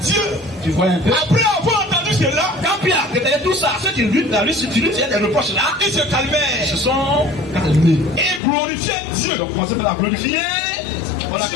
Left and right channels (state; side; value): drops out; right; at 8.4 s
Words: Dieu, tu vois un peu? après avoir entendu cela, Quand Pierre a détaillé tout ça, ceux qui lui, tu lui tiens des reproches là, ils se calmèrent se sont calmés. et glorifièrent Dieu. Donc, commencez par la glorifier. On